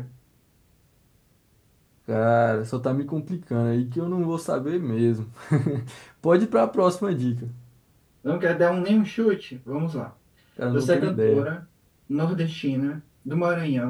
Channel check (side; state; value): both; identical; correlation 1.00